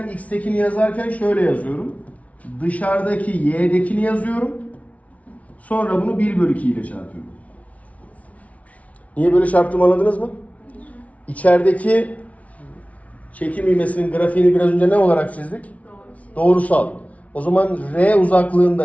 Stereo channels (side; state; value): right; late; 0.067 ms